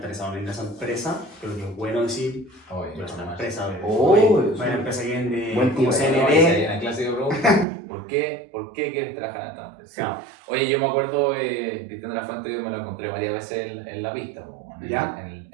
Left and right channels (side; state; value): left; drops out; at 7.7 s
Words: en esa empresa, creo que es bueno decir, yo soy una empresa, una empresa que vende como CND. La clásica pregunta, ¿por qué quieres trabajar en esta empresa? No. Oye, yo me acuerdo, Cristian de la Fuente, yo me lo encontré varias veces en la pista,